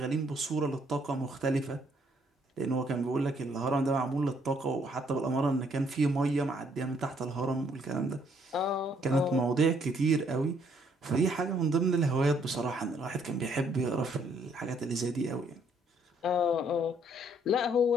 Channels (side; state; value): both; normal; correlation 0.67